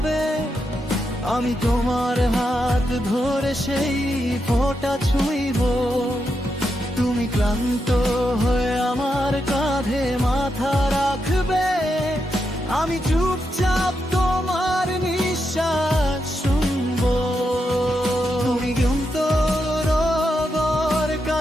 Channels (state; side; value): normal; both; correlation 0.84